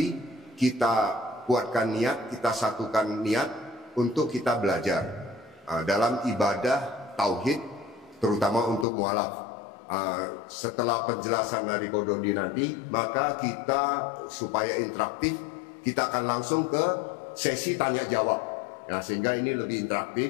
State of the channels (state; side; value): drops out; right; at 8.8 s